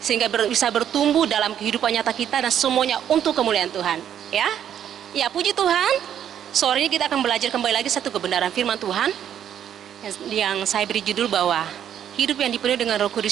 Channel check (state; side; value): quieter; left; 9.7 dB